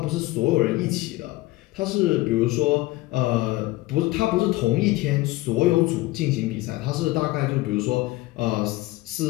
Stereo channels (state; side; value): quieter; right; 19.0 dB